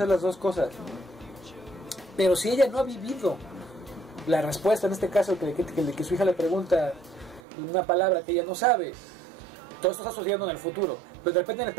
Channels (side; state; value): left; drops out; at 7.4 s